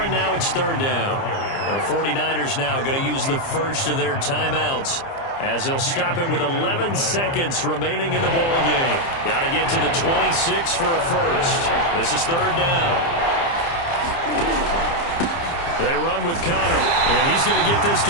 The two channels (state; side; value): late; right; 30 ms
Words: and now it's 3rd down. The 49ers now going to use the first of their timeouts, as they'll stop it with 11 seconds remaining in the ball game. Got to get to the 26 for a first. This is 3rd down. They run with Connor, and he's going to get this